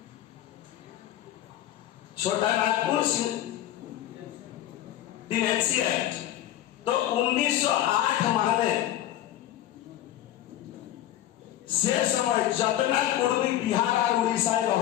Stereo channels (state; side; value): quieter; right; 12.9 dB